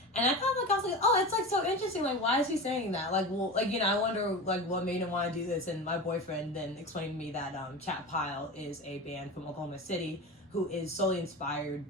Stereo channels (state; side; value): normal; both; correlation 0.28